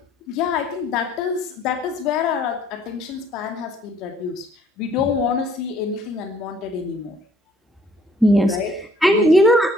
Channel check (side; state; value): both; normal; correlation 0.60